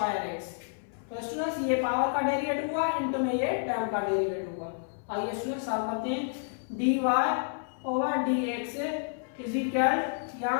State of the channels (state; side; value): silent; right; 58 dB below the other